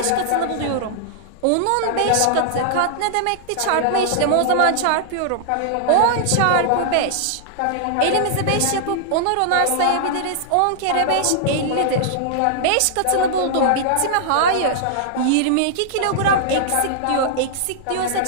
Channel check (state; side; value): different; both; correlation -0.01